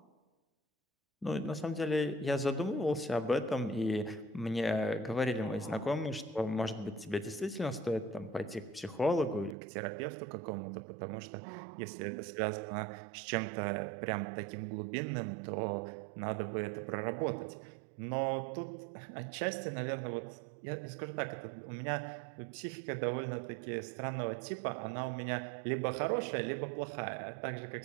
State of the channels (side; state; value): left; drops out; at 9.6 s